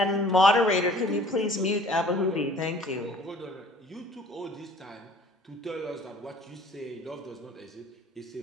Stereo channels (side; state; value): both; normal; correlation 0.52